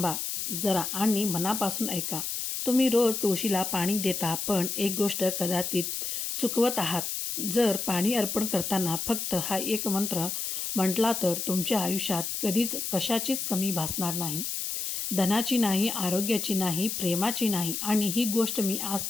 जरा आणि मनापासून ऐका. तुम्ही रोज तुळशीला पाणी देता, पण एक गोष्ट कदाचित चुकवत आहात. जर पाणी अर्पण करताना फक्त हा एक मंत्र म्हटला तर तुमच्या आयुष्यात कधीच कशाचीच कमी भासणार नाही. धनाची नाही, आरोग्याची नाही, प्रेमाची नाही. आणि ही गोष्ट मी आज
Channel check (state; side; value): noise; left; hiss, 3 dB below the sound